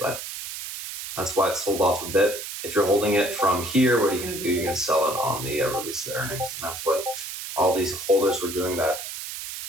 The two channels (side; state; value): right; noise; hiss, 8 dB below the sound